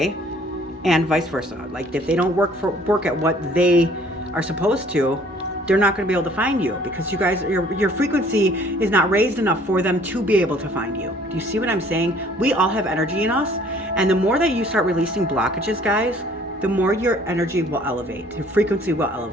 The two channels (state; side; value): normal; both; correlation 0.56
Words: And vice versa. Like if they don't work at what they are supposed to, they're not going to be able to find you, because you guys, your frequency is not raised enough for them to be able to find you. Do you see what I'm saying? We all have energy in us, and the more that you start releasing blockages, guys, the more your energy will elevate, your frequency will